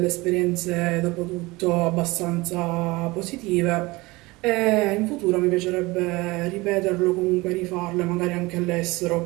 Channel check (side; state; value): left; quieter; 22.2 dB